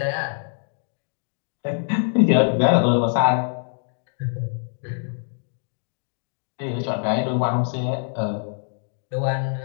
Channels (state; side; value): silent; right; digital silence